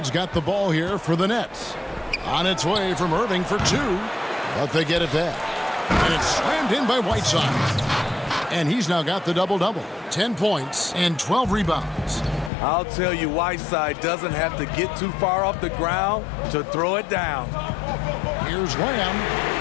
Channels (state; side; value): drops out; right; at 12.5 s